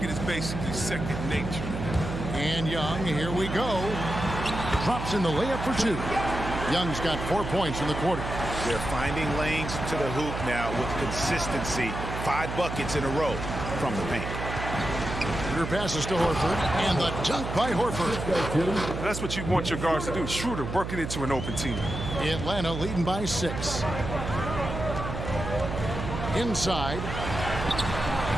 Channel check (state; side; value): noise; right; hum, 5 dB below the sound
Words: is basically second nature. And Young, here we go. Drops in the layup for 2. Young's got 4 points in the quarter. They're finding lanes to the hoop now with consistency. 5 buckets in a row from the paint. Schroeder passes to Horford, and the dunk by Horford. That's what you want your guards to do. Schroeder working into an open team. Atlanta leading by 6. Inside.